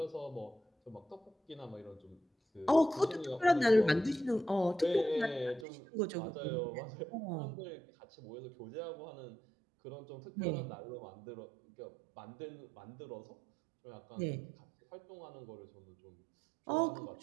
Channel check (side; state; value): left; drops out; at 5.7 s